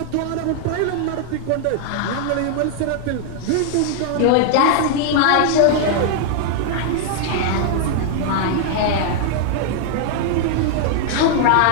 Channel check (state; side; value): different; both; correlation 0.00